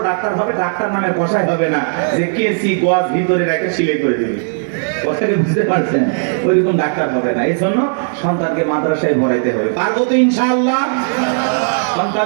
ডাক্তার হবে, ডাক্তার নামে কষাই হবে না যে কেসি গজ ভিতরে রেখে সিলাই করে দেবে। কথাটা বুঝতে পারছেন? ওইরকম ডাক্তার হবে না। এই জন্য সন্তানকে মাদ্রাসায় পড়াইতে হবে। পারবো তো ইনশাআল্লাহ?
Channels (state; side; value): silent; left; 69 dB below the other